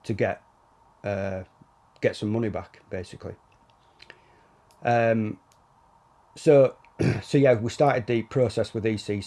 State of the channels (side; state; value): both; identical; correlation 1.00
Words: to get some money back, basically. So yeah, we started the process with